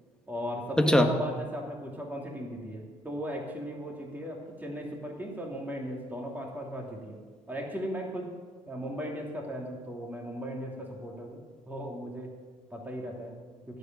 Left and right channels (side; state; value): both; normal; correlation 0.76